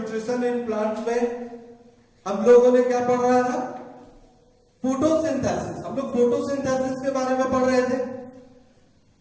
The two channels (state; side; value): identical; both; correlation 1.00